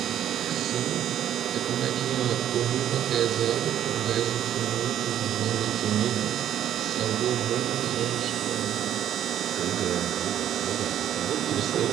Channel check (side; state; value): left; quieter; 10.7 dB